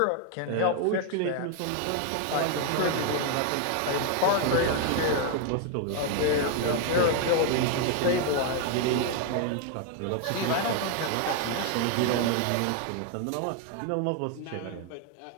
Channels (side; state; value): both; different; correlation 0.01